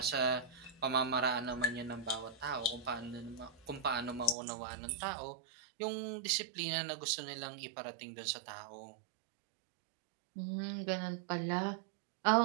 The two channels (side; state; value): left; drops out; at 4.4 s